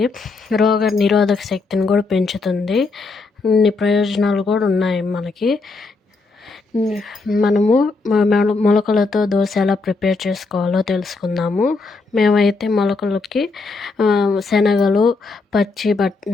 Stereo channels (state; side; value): quieter; right; 3.8 dB